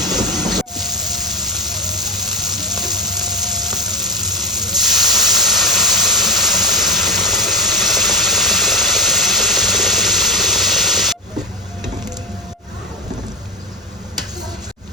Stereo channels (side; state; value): both; normal; correlation 0.17